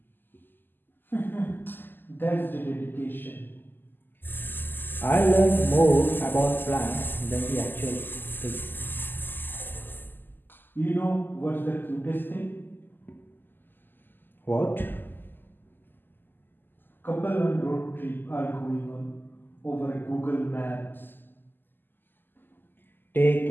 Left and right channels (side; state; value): right; late; 0.092 ms